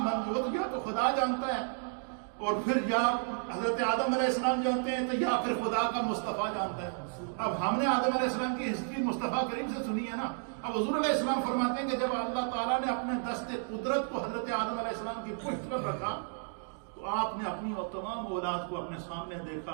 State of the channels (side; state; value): left; silent; 56 dB below the other